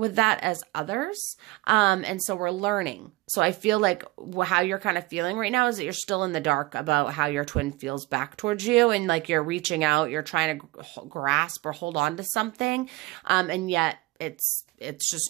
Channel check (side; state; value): left; quieter; 20.8 dB